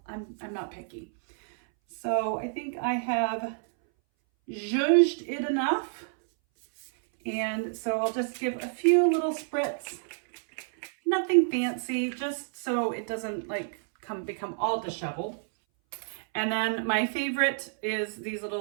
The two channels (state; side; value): silent; left; 59 dB below the other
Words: picky. So I think I have zhuzhed it enough. And so I'll just give a few little spritz, nothing fancy, just so it doesn't like become all disheveled. And then my favorite is these